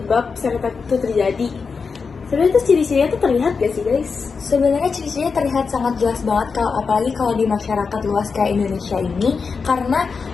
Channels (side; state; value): right; quieter; 5.1 dB